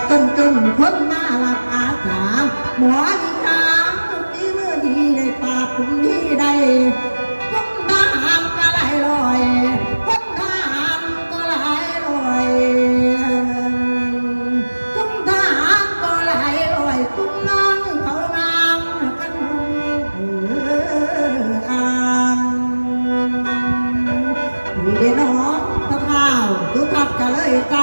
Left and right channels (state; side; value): inverted; both; correlation -1.00